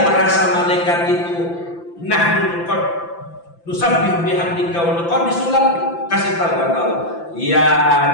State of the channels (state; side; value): late; right; 5.9 ms